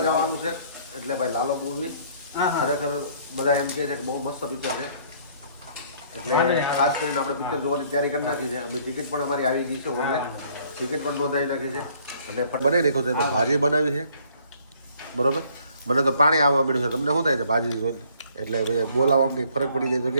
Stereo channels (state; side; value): inverted; both; correlation -0.60